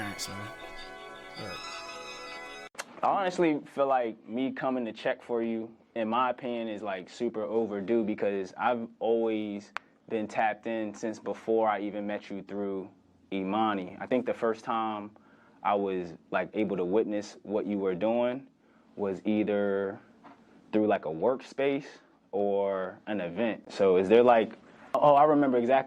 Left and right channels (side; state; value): both; identical; correlation 1.00